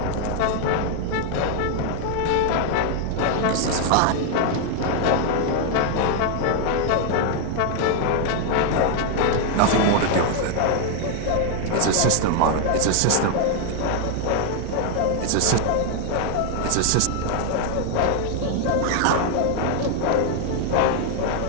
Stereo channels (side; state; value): both; different; correlation 0.00